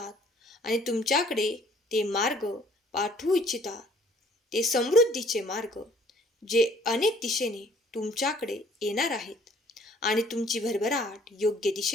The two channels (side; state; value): both; normal; correlation 0.58